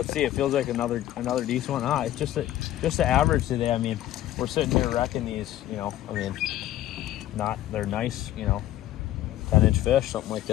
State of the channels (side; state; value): right; quieter; 13.7 dB